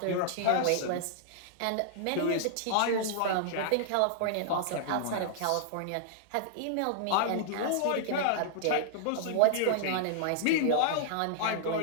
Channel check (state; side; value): different; both; correlation -0.01